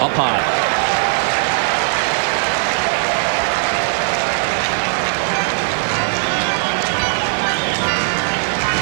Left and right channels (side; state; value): left; silent; digital silence